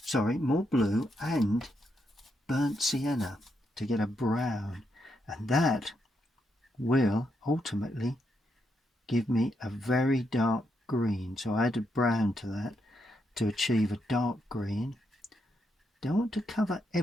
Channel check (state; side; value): normal; both; correlation 0.80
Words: more blue and burnt sienna to get a brown, and that will ultimately give me a very dark green. So I added brown to that to achieve a dark green. Don't want to cover